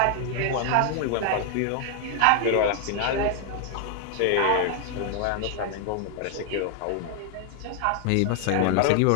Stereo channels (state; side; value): different; both; correlation 0.00